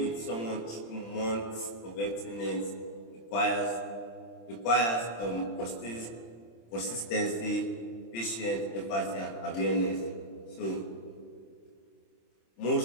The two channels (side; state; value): right; late; 26 ms